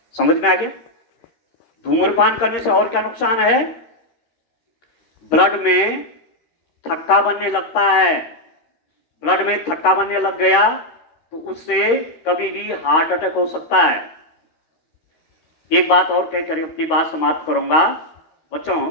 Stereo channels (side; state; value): right; late; 13 ms